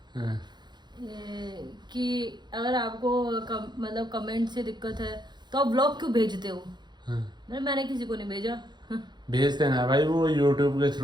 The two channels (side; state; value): left; late; 0.21 ms